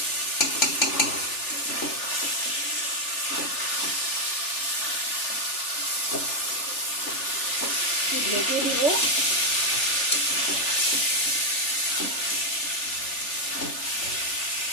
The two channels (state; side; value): late; right; 3.4 ms